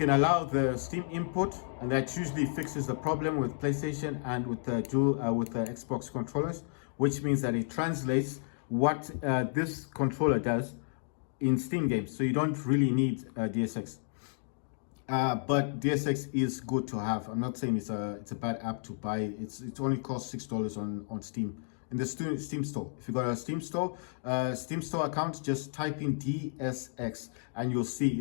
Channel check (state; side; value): silent; right; digital silence